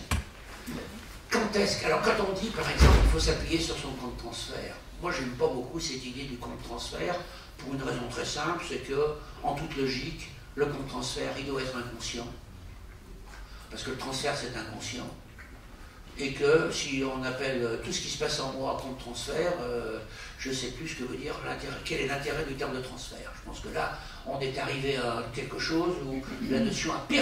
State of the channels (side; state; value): both; identical; correlation 1.00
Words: Alors quand on dit par exemple qu'il faut s'appuyer sur son compte transfert, moi j'aime pas beaucoup cette idée du compte transfert pour une raison très simple, c'est que en toute logique, le compte transfert il doit être inconscient. Parce que le transfert c'est inconscient. Et que si on appelle tout ce qui se passe en moi compte transfert, je ne sais plus ce que veut dire quel est l'intérêt du terme de transfert. Je pense que là, on est arrivé à quelque chose où la notion a